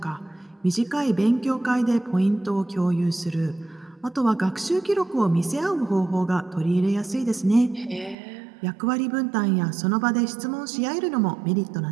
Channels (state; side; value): drops out; left; at 8.2 s